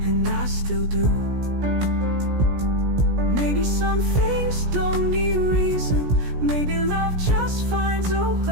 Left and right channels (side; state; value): left; late; 17 ms